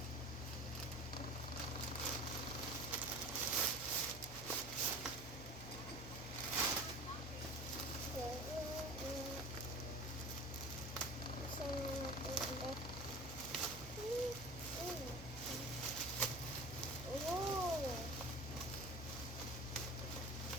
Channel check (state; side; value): normal; both; correlation 0.37